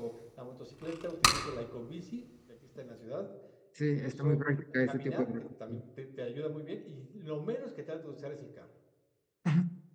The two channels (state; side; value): identical; both; correlation 1.00